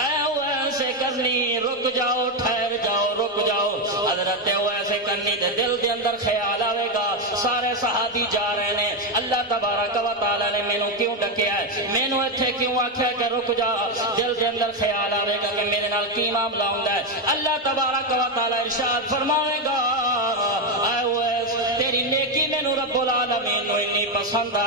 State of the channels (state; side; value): normal; both; correlation 0.07